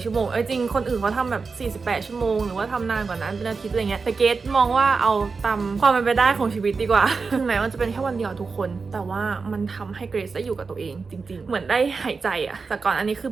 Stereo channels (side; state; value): left; quieter; 4.7 dB